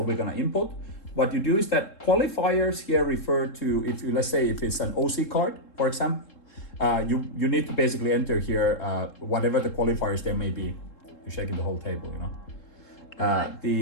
we're gonna input. What you do is that qualifiers here refer to, if you, let's say if it's an OC card, for example, you need to basically enter here whatever the qualifiers there may be. You're shaking the whole table, you know. But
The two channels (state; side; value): late; right; 3.7 ms